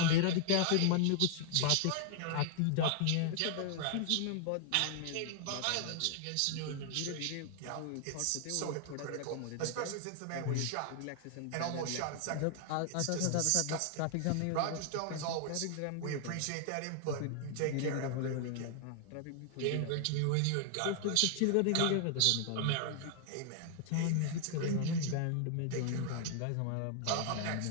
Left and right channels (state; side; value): different; both; correlation 0.00